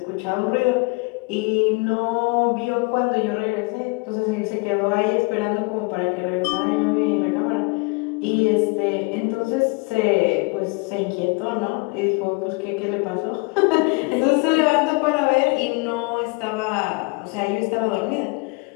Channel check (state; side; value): quieter; right; 29.0 dB